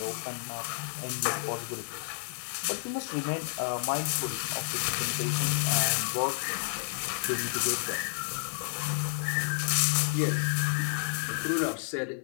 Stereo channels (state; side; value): silent; right; digital silence